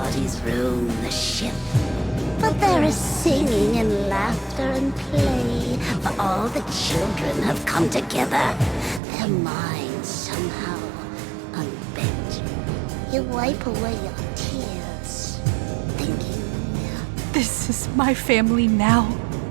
roam the ship. But there is singing and laughter and play, for all the children have come together. Their minds somehow unbent. You wipe away your tears, thinking, This is my family now.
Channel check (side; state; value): left; drops out; at 9.0 s